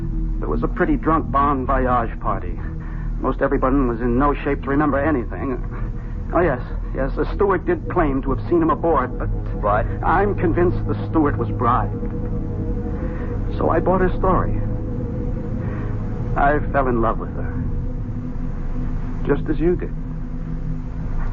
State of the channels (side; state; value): both; identical; correlation 1.00